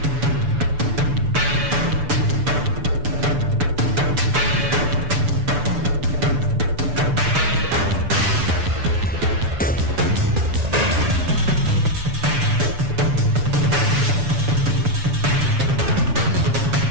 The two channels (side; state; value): left; late; 6.9 ms